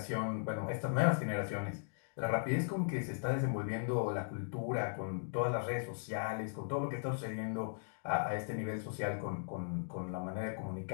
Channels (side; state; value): right; silent; digital silence